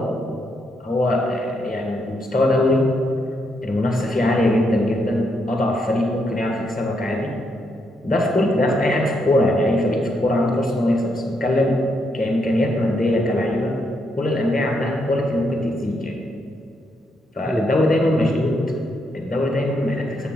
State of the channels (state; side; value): normal; both; correlation 0.78